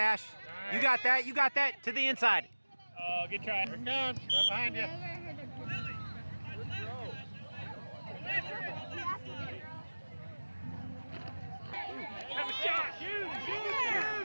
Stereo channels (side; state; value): both; inverted; correlation -1.00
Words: You got that. You got that. To the inside. Oh, good try. Here it comes. Right behind you. Never heard of Have a shot! Shoot!